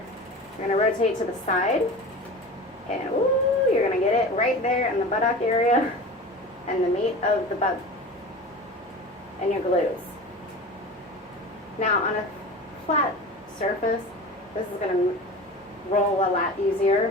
You're going to rotate to the side, and ooh, you're going to get it right there in the buttock area and the meat of the butt and your glutes. Now, on a flat surface, this is going to roll a lot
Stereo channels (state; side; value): normal; both; correlation 0.34